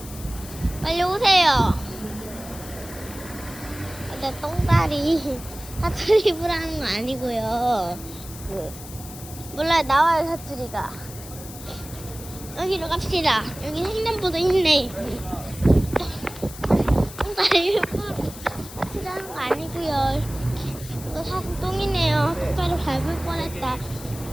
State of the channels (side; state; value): left; noise; hiss, 15 dB below the sound